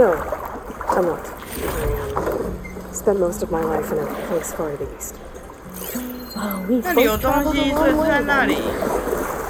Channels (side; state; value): both; identical; correlation 1.00